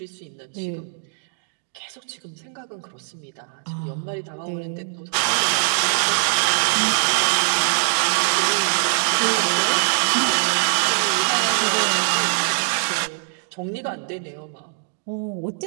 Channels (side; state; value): left; silent; digital silence